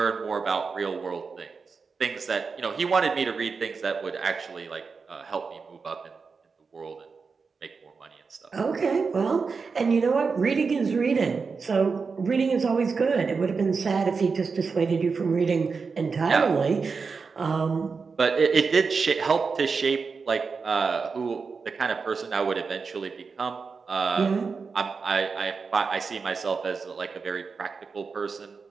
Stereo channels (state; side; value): quieter; left; 5.0 dB